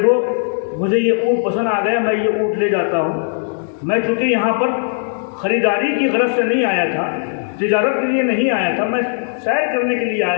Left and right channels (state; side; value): silent; right; 67 dB below the other